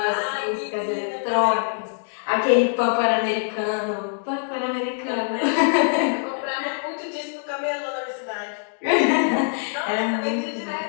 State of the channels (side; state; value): right; silent; 63 dB below the other